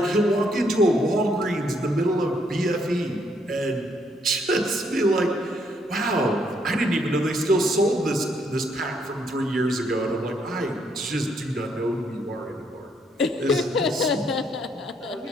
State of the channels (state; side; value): normal; both; correlation 0.72